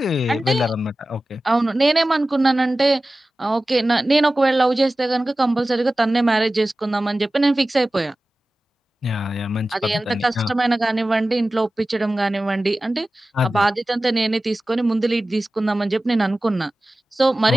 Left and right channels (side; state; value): both; normal; correlation 0.96